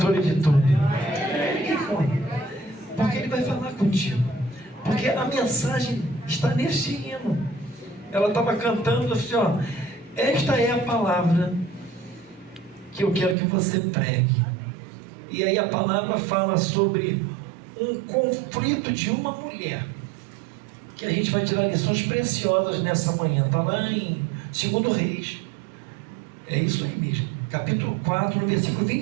de tudo? Porque ele vai falar contigo. Porque a mensagem está neste hino. Ela estava cantando assim, ó: esta é a palavra que eu quero que você pregue. E aí a palavra fala sobre um conflito de uma mulher, que a gente vai tirar lições preciosas nessa manhã. Está lá em 2 Reis. É isso aí mesmo. Capítulo 4, no versículo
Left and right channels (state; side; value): drops out; left; at 13.4 s